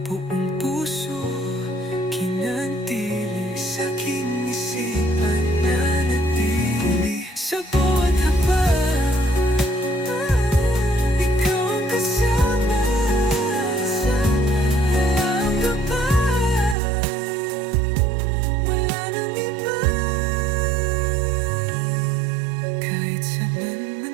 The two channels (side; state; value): left; drops out; at 16.8 s